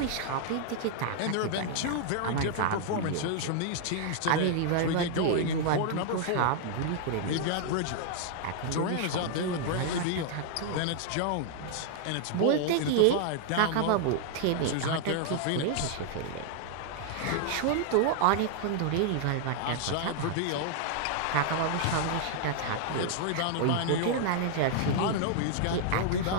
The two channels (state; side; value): different; both; correlation -0.01